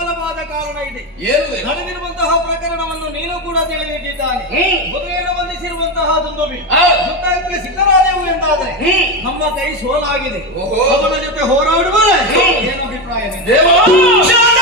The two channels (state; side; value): normal; both; correlation 0.14